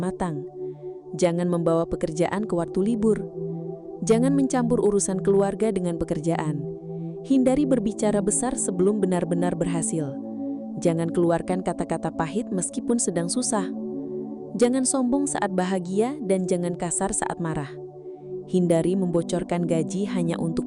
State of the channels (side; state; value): both; identical; correlation 1.00